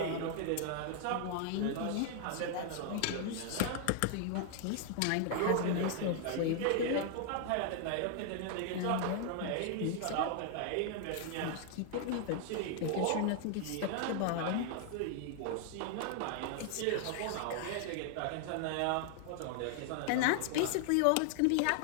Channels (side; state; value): both; different; correlation 0.00